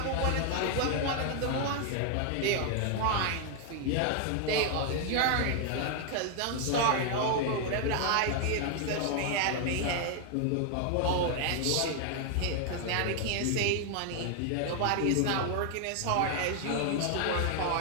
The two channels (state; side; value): different; both; correlation 0.00